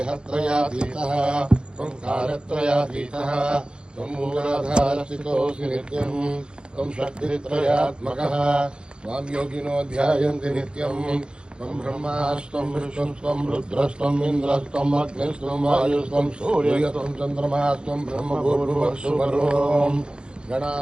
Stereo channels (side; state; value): left; late; 0.051 ms